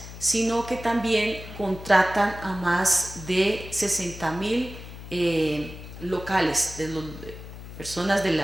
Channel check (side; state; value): left; noise; hum, 13 dB below the sound